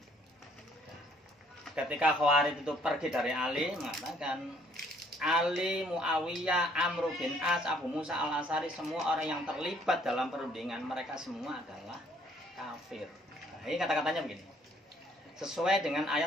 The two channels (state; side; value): normal; both; correlation 0.63